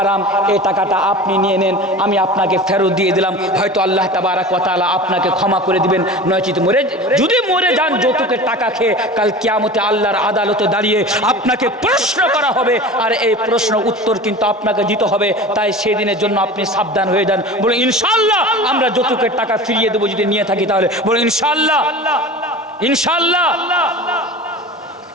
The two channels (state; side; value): normal; both; correlation 0.35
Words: এই টাকাটা আপনি নিয়ে নেন, আমি আপনাকে ফেরত দিয়ে দিলাম। হয়তো আল্লাহ তাবারাক ওয়া তাআলা আপনাকে ক্ষমা করে দিবেন। নয়তো যদি মরে যান যৌতুকের টাকা খেয়ে, কাল কিয়ামতে আল্লাহর আদালতে দাঁড়িয়ে আপনাকে প্রশ্ন করা হবে, আর এই প্রশ্ন উত্তর কিন্তু আপনাকে দিতে হবে। তাই সেদিনের জন্য আপনি সাবধান হয়ে যান। বলে ইনশাআল্লাহ আমরা যৌতুকের টাকা ফিরিয়ে দেবো যদি নিয়ে থাকি তাহলে। বলে ইনশাআল্লাহ। ইনশাআল্লাহ।